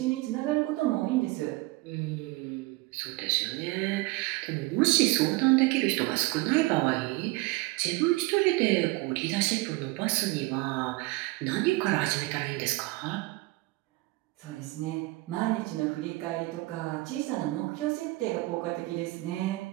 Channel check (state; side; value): quieter; left; 21.7 dB